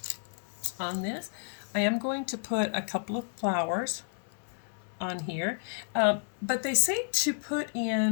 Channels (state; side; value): silent; right; 57 dB below the other